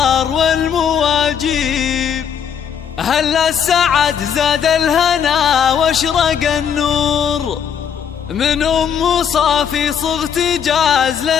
والمواجيب، أهل السعد زاد الهنا واشرق النور، من أم صافي صغت جاز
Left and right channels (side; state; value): right; quieter; 7.9 dB